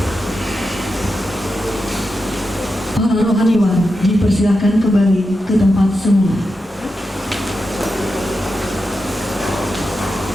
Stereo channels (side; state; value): both; normal; correlation 0.89